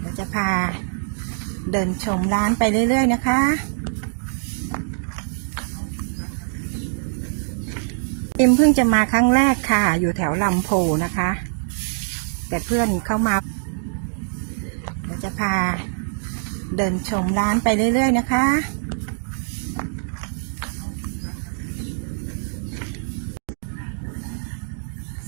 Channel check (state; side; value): silent; left; digital silence